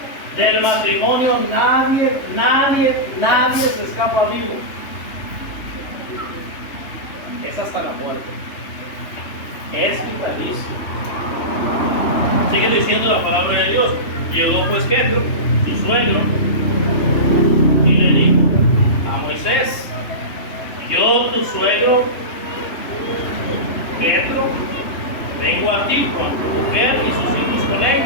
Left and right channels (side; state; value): right; late; 3.1 ms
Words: Del matrimonio nadie se escapa vivo. Es hasta la muerte. Es vitalicio. Sigue diciendo la palabra de Dios. Llegó pues Jetro, su suegro, y le dijo a Moisés, yo tu suegro Jetro, vengo a ti con tu mujer y sus hijos con